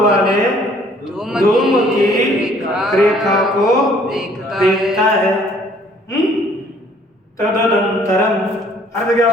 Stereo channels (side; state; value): both; normal; correlation 0.59